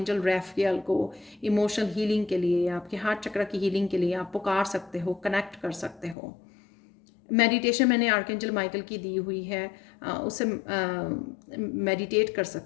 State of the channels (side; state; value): right; drops out; at 6.2 s